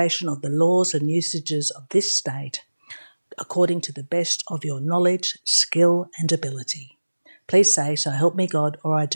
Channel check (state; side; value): inverted; both; correlation -1.00